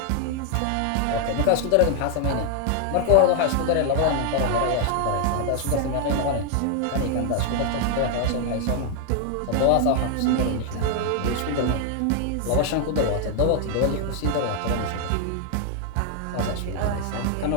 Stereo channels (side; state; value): both; different; correlation 0.00